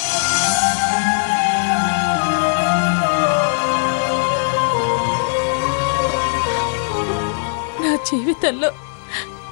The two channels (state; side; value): silent; right; digital silence